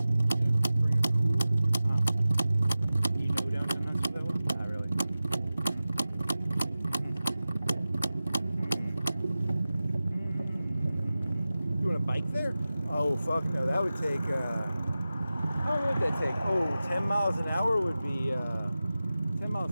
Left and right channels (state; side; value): inverted; both; correlation -0.95